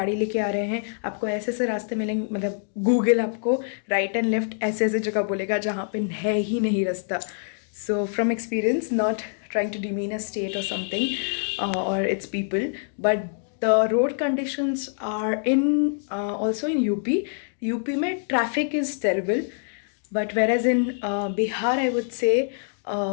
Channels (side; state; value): right; silent; digital silence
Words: लेके आ रहे हैं, आपको ऐसे ऐसे रास्ते मिलेंगे, मतलब गूगल आपको राइट एंड लेफ्ट ऐसे ऐसे जगह बोलेगा जहाँ पे है ही नहीं रास्ता। So from experience, not trying to demean a state or something or its people, but the road conditions are in also in UP में traffic is terrible, but whereas in Bihar I would say